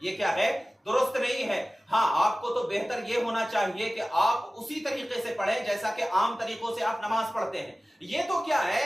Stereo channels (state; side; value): normal; both; correlation 0.97